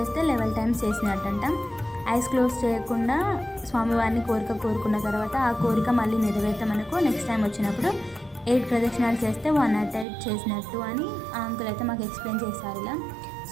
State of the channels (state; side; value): drops out; left; at 10.1 s